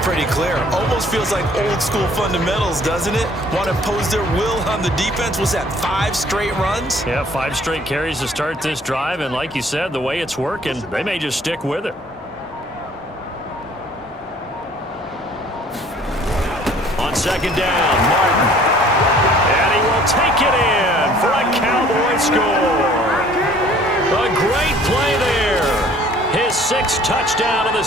clear. Almost feels like old school fundamentals, doesn't it? Want to impose their will on the defense. Was that 5 straight runs? Yeah, 5 straight carries to start this drive. And like you said, the way it's working, they may just stick with it. On 2nd down, Martin. And he will take it in for a Cowboy score. A great play there. His 6th touchdown of the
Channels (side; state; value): both; normal; correlation 0.55